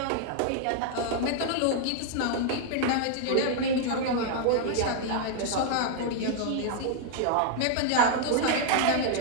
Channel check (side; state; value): both; different; correlation 0.00